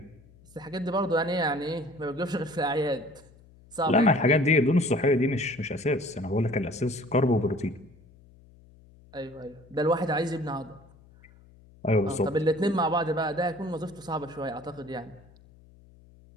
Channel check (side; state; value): left; noise; hum, 25 dB below the sound